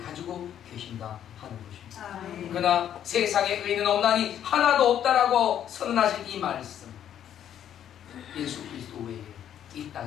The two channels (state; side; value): quieter; right; 10.1 dB